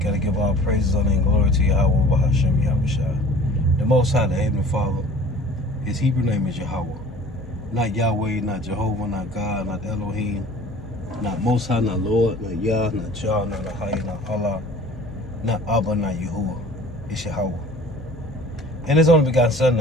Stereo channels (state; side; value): normal; both; correlation 0.47